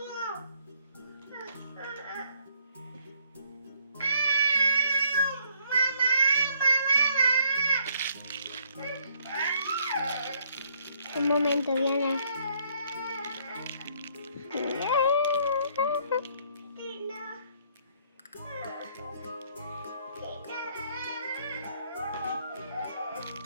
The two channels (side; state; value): both; inverted; correlation -0.67